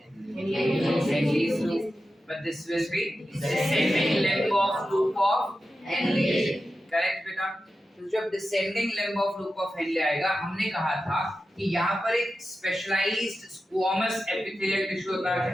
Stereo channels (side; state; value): both; normal; correlation 0.92